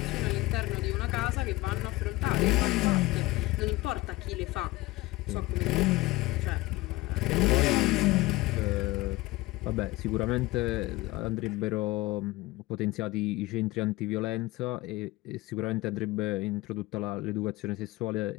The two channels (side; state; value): right; quieter; 19.8 dB